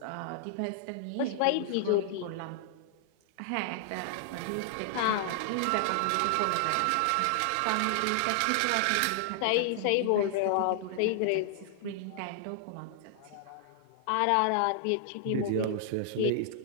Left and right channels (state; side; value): different; both; correlation -0.01